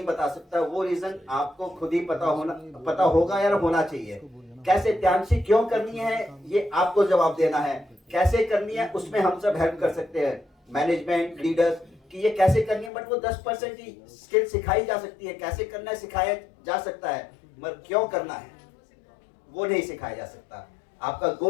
बता सकता, वो रीजन आपको खुद ही पता होगा या होना चाहिए। कैसे त्यालशी क्यों करनी है, ये आपको जवाब देना है। कैसे करनी है उसमें हम सब हेल्प कर सकते हैं, मैनेजमेंट, लीडर्स, कि ये कैसे करनी है, बट वो 10% ही स्किल सिखाई जा सकती है। कैसे करना है सिखाया जा सकता है, मगर क्यों करना है वो नहीं सिखाया जा सकता। आपका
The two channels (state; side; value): drops out; right; at 12.9 s